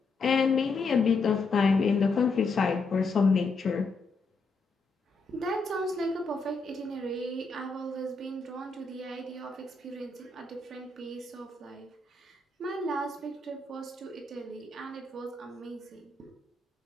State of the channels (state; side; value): quieter; right; 3.8 dB